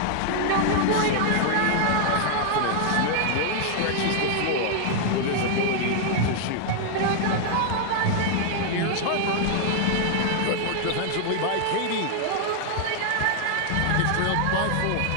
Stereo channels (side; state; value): both; different; correlation -0.01